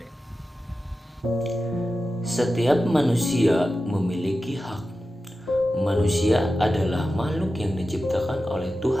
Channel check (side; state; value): both; normal; correlation 0.93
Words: Setiap manusia memiliki hak. Manusia adalah makhluk yang diciptakan oleh